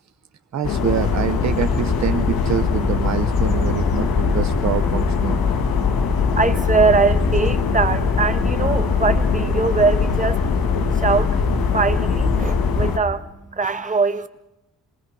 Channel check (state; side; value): normal; both; correlation 0.48